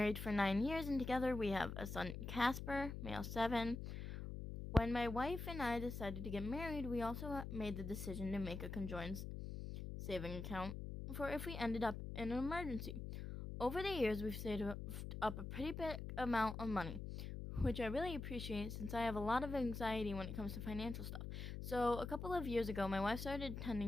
for 9 years, and together we have a son, Casper, male 7. When my wife and I decided to get married, we also made the decision to make a conjoined saving account for if we ended up in an emergency. Over the years, we've saved up a pretty big amount of money, which I really appreciate since I have a lot of anxiety when it comes to financial stuff. So, a couple of years ago, my wife started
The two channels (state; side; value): noise; left; hum, 6 dB below the sound